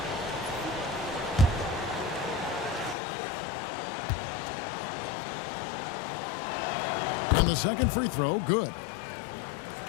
And the second free throw, good.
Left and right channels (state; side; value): drops out; right; at 3.0 s